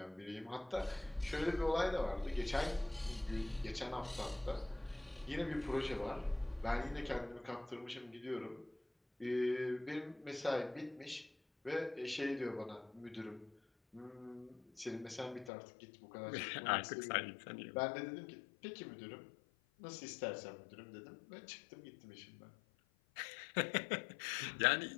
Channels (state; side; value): drops out; right; at 15.5 s